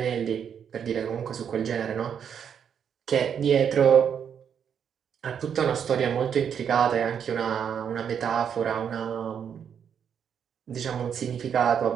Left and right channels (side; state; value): left; quieter; 7.9 dB